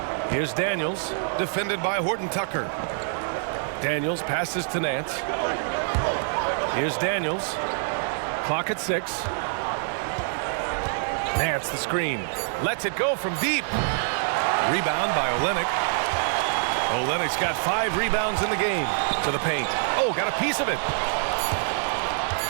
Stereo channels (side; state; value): left; silent; digital silence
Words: Here's Daniels, defended by Horton Tucker. Daniels passes to Nance. Here's Daniels. Clock at 6. Nance the screen. Lets it go from deep. Rebound by Olynyk. Olynyk's got 5 rebounds in the game. To the paint. Oh, got a piece of it.